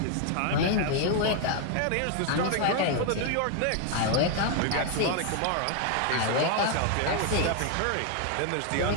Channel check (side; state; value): both; different; correlation 0.01